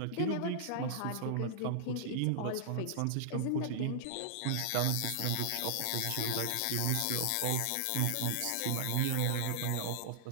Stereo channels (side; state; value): both; different; correlation -0.01